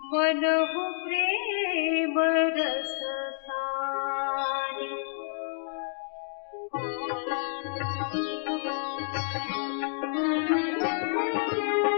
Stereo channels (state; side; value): silent; right; digital silence